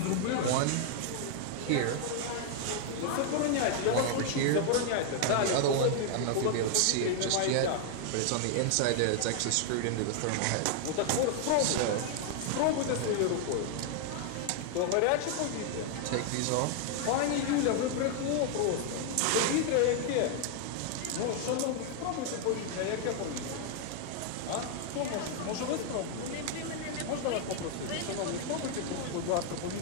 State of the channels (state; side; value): different; both; correlation 0.00